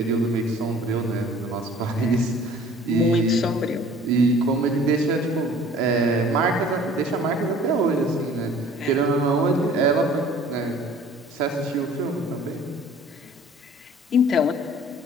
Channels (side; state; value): both; normal; correlation 0.50